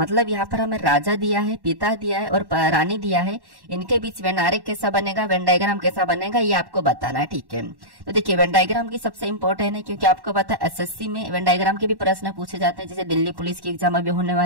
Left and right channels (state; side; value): late; left; 1.1 ms